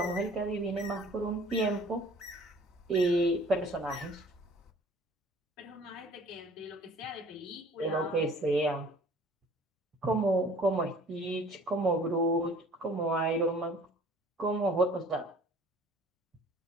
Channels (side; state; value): both; normal; correlation 0.51